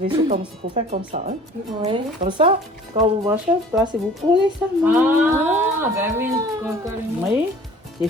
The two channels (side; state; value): both; normal; correlation 0.48